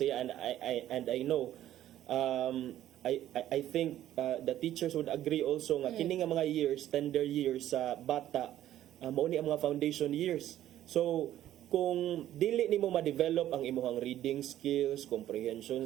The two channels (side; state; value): left; quieter; 12.6 dB